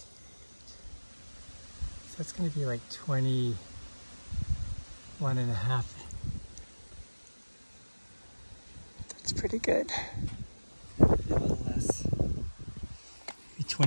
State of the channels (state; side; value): inverted; both; correlation -1.00